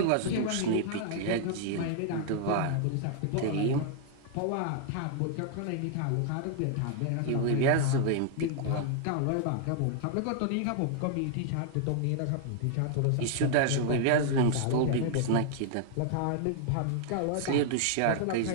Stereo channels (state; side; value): different; both; correlation 0.00